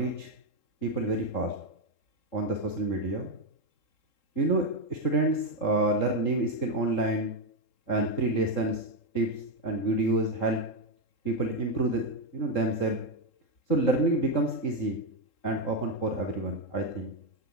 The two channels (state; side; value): late; right; 3.7 ms